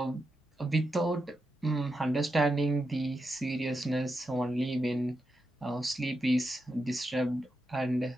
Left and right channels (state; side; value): normal; both; correlation 0.87